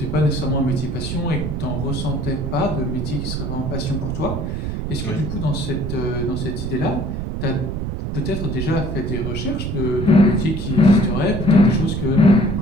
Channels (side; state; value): right; noise; rumble, 3 dB below the sound